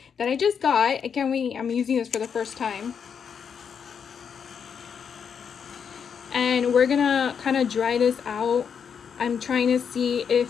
that I just got. I can't wait. I'm using this for the first time. And we're gonna kind of dry this out. I'm trying to see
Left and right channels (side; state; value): right; quieter; 7.0 dB